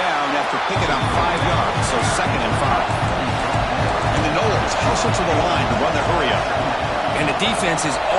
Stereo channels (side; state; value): both; identical; correlation 1.00